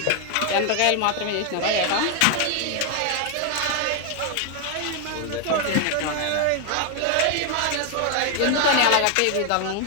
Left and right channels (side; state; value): both; different; correlation 0.01